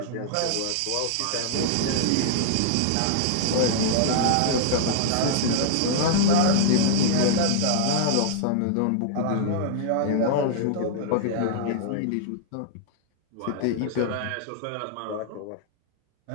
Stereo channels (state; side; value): different; both; correlation -0.01